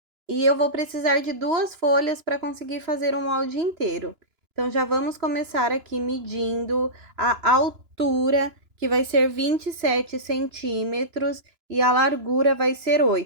E eu vou precisar de 2 folhas para conseguir fazer o molde inteiro. Então, já vamos começar aqui medindo a altura, que vai ser 27 centímetros, e a largura vai ser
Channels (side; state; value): left; late; 2.9 ms